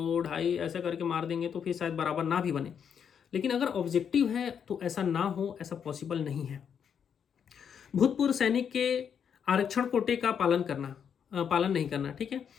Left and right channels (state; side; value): quieter; right; 7.7 dB